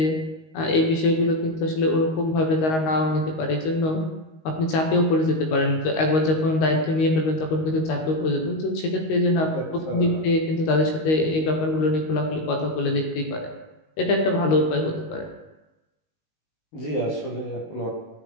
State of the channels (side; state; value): right; late; 19 ms